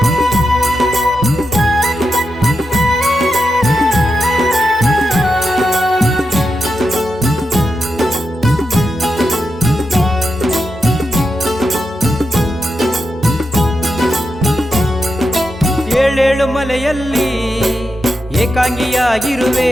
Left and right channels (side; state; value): both; normal; correlation 0.87